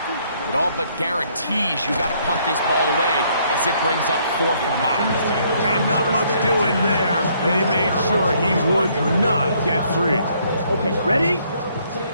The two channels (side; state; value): both; inverted; correlation -0.67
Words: it all but guarantees you got to punt this ball away as it brings up 4th and mile. And not much doing there. They made sure he would not get free. Okay, ready?